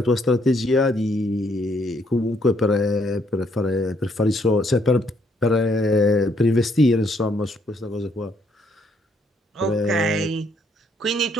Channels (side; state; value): both; normal; correlation 0.70